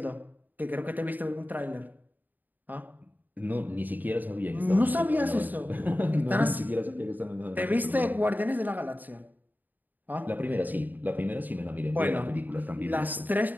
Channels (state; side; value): late; left; 0.086 ms